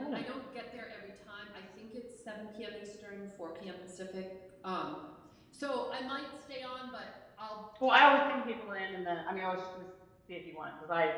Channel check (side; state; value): both; identical; correlation 1.00